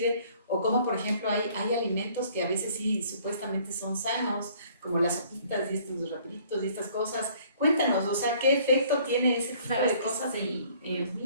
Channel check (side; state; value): both; inverted; correlation -0.57